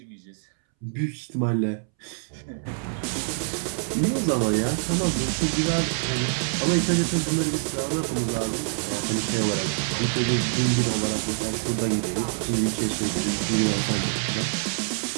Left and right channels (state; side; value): silent; left; 61 dB below the other